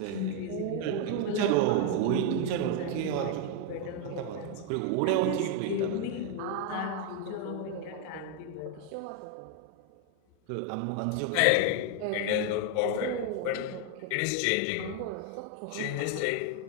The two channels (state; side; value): different; both; correlation 0.01